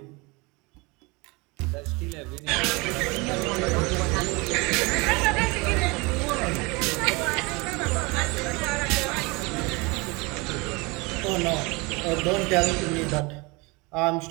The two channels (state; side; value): quieter; left; 26.5 dB